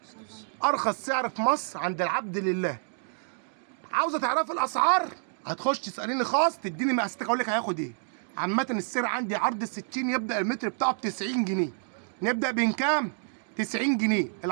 ارخص سعر في مصر عند العبد لله. عاوزه تعرفي الاسعار؟ هتخش تساليني خاص تديني مقاساتك اقول لك هياخد ايه. عامه السعر عندي عرض ال 60 يبدا المتر بتاعه ب 90 جنيه. نبدا بين كام؟ 90 جنيه.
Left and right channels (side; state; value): left; silent; digital silence